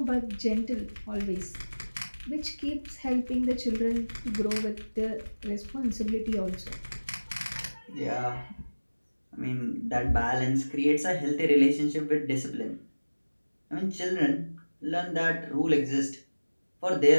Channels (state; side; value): inverted; both; correlation -1.00